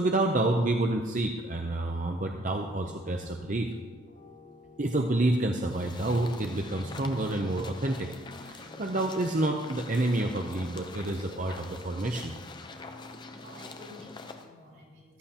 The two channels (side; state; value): both; normal; correlation 0.64